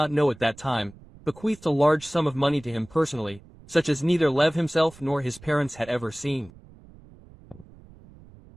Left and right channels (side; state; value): right; noise; rumble, 22 dB below the sound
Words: know at that time, bequeathed a large sum of money to him personally, such as neither Lev himself nor his parents had ever seen.